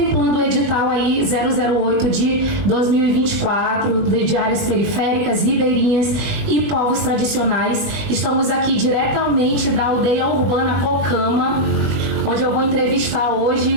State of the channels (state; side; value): late; left; 20 ms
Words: o edital aí 008 de 2024, de áreas periféricas, ribeirinhas e povos tradicionais. Estamos aqui diretamente da aldeia urbana Cocama, onde eu vou entrevistar